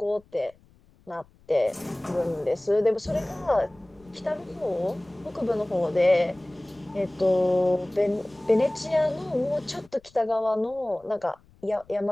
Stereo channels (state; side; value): noise; left; rumble, 29 dB below the sound